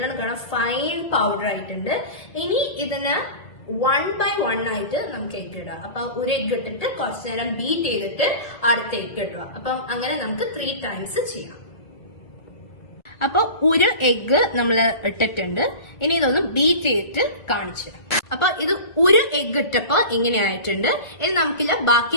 കാണാം ഫൈൻ പൗഡർ ആയിട്ടുണ്ട്. ഇനി ഇതിന് 1 by 1 ആയിട്ട് നമുക്ക് എഗ് ഇടാം. അപ്പൊ ഒരു എഗ് ഇട്ടിട്ട് കുറച്ചു നേരം ബീറ്റ് ചെയ്തിട്ട് അടുത്ത എഗ് ഇടുക. അപ്പം അങ്ങനെ നമുക്ക് 3 times ചെയ്യാം. അപ്പൊ ഒരു എഗ് നമ്മൾ ഇട്ടിട്ടുണ്ട്. ഇനി ഇതൊന്ന് ബീറ്റ് ചെയ്തിട്ട് കാണിച്ചു. അപ്പൊ ഇത് ഒരു എഗ് ഇട്ടപ്പോ ഇങ്ങനെ ആയിട്ടുണ്ട്. ഇനി നമുക്കില്ല ബാക്കി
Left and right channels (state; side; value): late; right; 2.0 ms